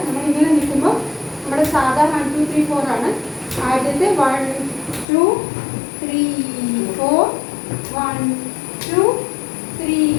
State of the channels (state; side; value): drops out; right; at 5.1 s